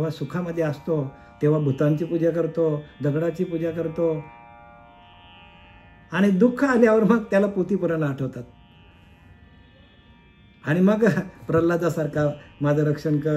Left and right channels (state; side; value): identical; both; correlation 1.00